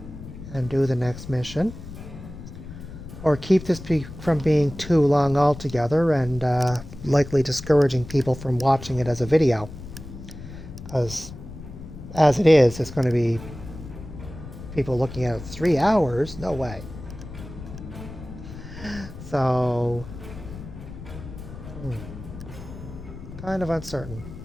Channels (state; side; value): noise; left; rumble, 13 dB below the sound